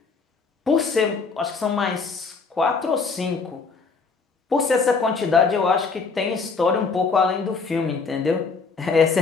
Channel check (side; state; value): right; quieter; 4.7 dB